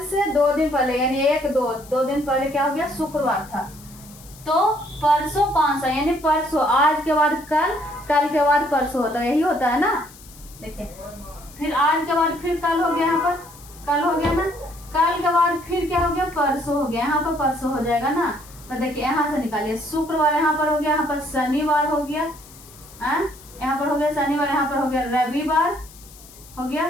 से 2 दिन पहले यानी 1, 2 दिन पहले क्या हो गया? शुक्रवार था। तो परसों कौन सा? यानी परसों, आज के बाद कल, कल के बाद परसों होता है, यही होता है ना। देखिए फिर आज के बाद फिर कल हो गया, यहाँ पर कल हो गया ना, कल के बाद फिर क्या हो गया? परसों हो गया, यहाँ पर परसों हो जाएगा ना। तो देखिए यहाँ से निकालिए, शुक्रवार यहाँ पर हो गया, यहाँ पर शनिवार हो गया, यहाँ पर हो गया शनिवार, यहाँ पर हो गया रविवार हो गया,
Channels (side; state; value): left; noise; hiss, 21 dB below the sound